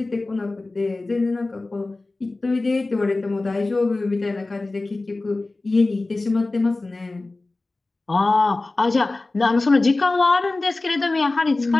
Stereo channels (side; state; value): right; quieter; 3.2 dB